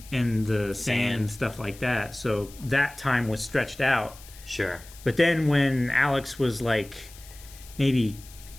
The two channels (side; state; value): left; noise; hiss, 20 dB below the sound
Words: the sand and stuff like that. So that time was stretched out. Sure. But then when Alex was like maybe